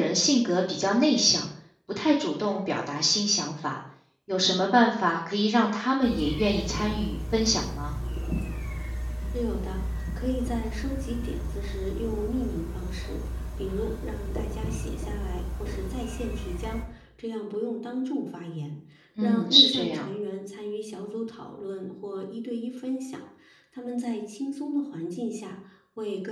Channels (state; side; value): identical; both; correlation 1.00